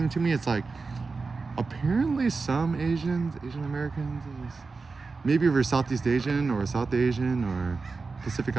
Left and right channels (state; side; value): quieter; left; 4.2 dB